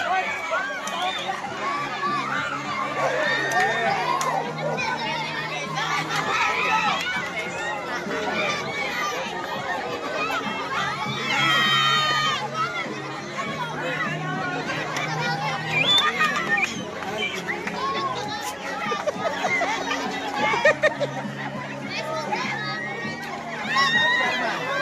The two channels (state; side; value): identical; both; correlation 1.00